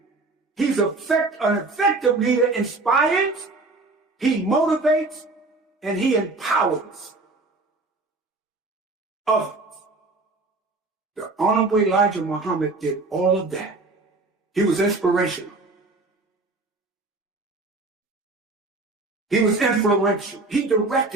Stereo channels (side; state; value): left; quieter; 3.4 dB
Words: He's an effective leader. Inspires, he motivates, and he empowers others. The Honorable Elijah Muhammad did all of that. He was inspirational. He was influential. He